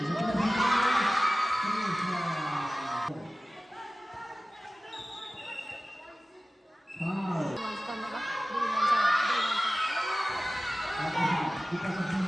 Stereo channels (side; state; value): both; normal; correlation 0.96